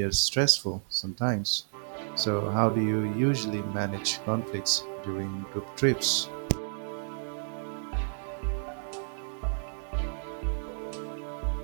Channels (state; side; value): silent; left; digital silence